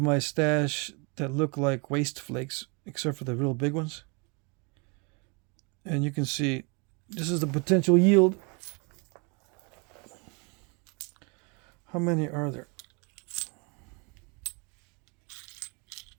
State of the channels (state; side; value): quieter; left; 32.3 dB